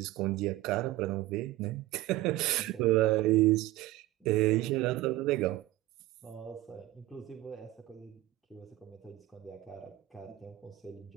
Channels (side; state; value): left; quieter; 16.7 dB